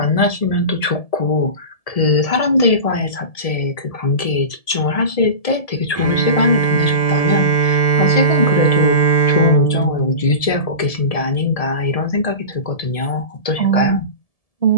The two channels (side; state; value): right; late; 1.7 ms